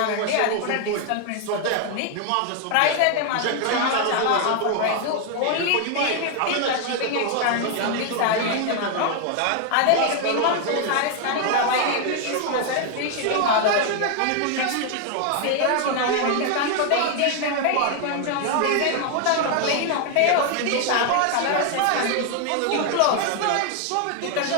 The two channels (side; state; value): both; different; correlation 0.01